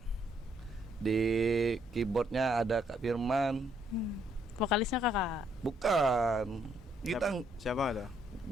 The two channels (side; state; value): both; normal; correlation 0.71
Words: Di keyboardnya ada Kak Firman. Vokalisnya Kakak. Bukan. Kita Siapa ada?